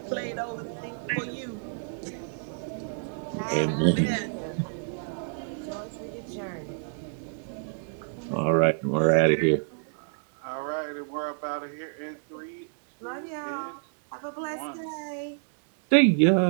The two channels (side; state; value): left; silent; digital silence